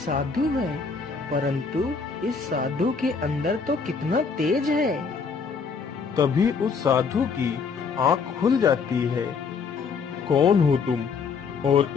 है, परंतु इस साधु के अंदर तो कितना तेज है। तभी उस साधु की आंख खुल जाती है। कौन हो तुम और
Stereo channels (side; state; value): right; quieter; 5.3 dB